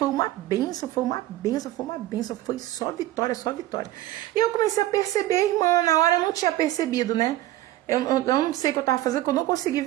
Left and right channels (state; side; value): quieter; left; 15.2 dB